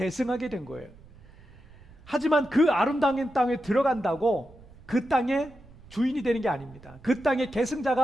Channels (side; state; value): right; noise; rumble, 22 dB below the sound